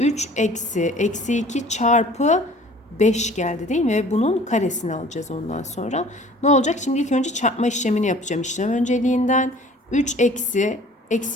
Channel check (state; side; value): normal; both; correlation 0.49